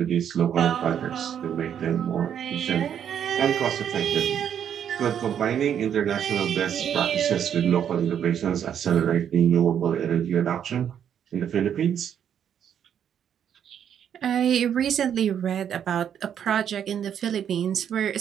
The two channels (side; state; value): left; quieter; 8.9 dB